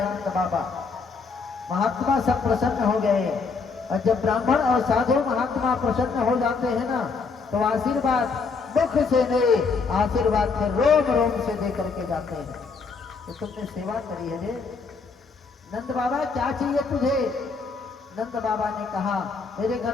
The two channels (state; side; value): quieter; right; 4.7 dB